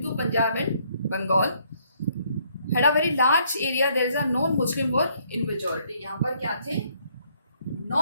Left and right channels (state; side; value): inverted; both; correlation -0.67